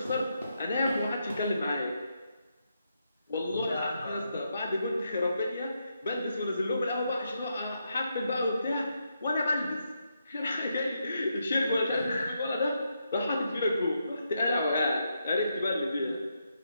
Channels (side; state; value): both; inverted; correlation -0.82